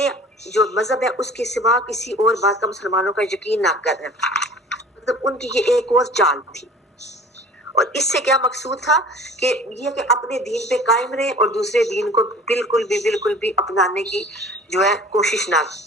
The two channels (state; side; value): normal; both; correlation 0.45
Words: جو مذہب ہے اس کے سوا کسی اور بات کا مسلمانوں کا یقین نہ کریں۔ مطلب ان کی یہ ایک اور چال تھی، اور اس سے کیا مقصود تھا کہ یہ کہ اپنے دین پہ قائم رہے اور دوسرے دین کو بالکل بھی اپنانے کی جو ہے کوشش نہ